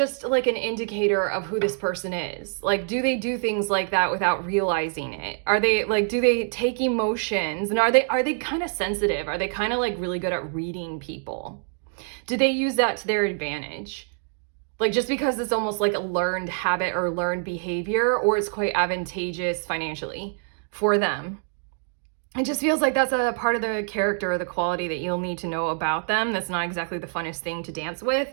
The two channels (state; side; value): silent; left; 56 dB below the other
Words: like an indicator of who this person is. Like, do they do things like that without realizing it? Are they like, do they take emotions? And are they kind of sensitive? Are they kind of like really good at reading people? Do they use that to their advantage? Like, just because it's almost like a learned habit or learned behavior, or it's quite advantageous financially for them. It just feels like that's a part of the character or the quality that you'll need to know about them. That's not exactly the funnest thing to dance with.